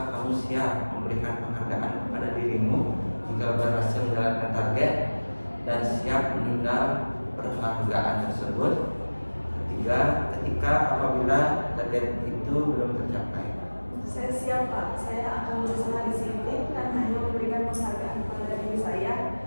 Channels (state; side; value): inverted; both; correlation -1.00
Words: kamu siap memberikan penghargaan kepada dirimu jika berhasil menjalankan target dan siap menunda penghargaan tersebut ketika apabila target itu belum tercapai? Saya siap Pak, saya akan berusaha disiplin dan hanya memberikan penghargaan kepada diri saya